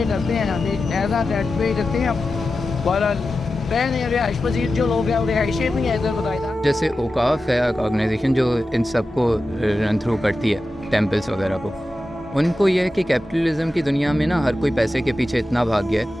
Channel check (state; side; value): normal; both; correlation 0.93